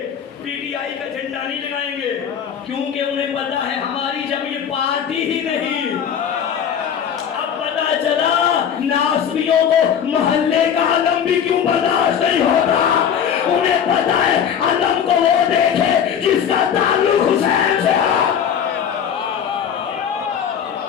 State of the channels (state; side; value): quieter; right; 8.2 dB